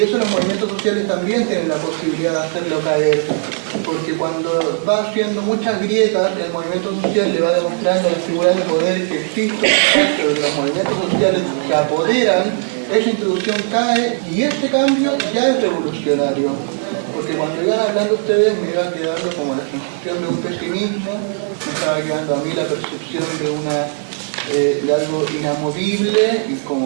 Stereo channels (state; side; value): silent; left; 55 dB below the other